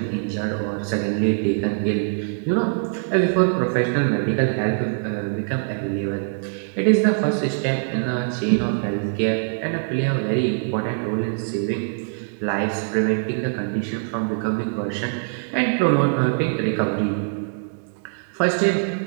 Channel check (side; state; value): left; silent; digital silence